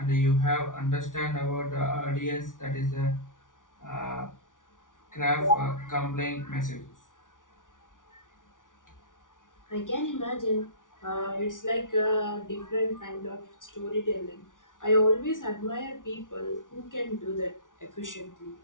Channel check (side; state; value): right; late; 0.88 ms